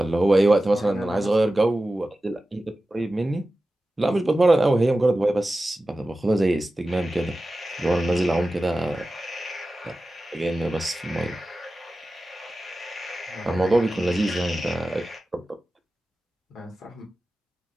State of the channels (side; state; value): both; normal; correlation 0.95